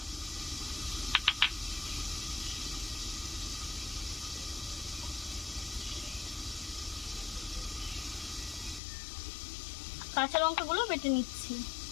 কাঁচা লঙ্কাগুলো বেটে নিচ্ছি।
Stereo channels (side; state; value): right; drops out; at 8.8 s